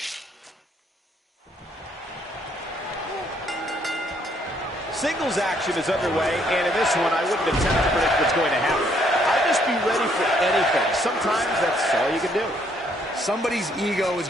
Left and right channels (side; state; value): both; normal; correlation 0.68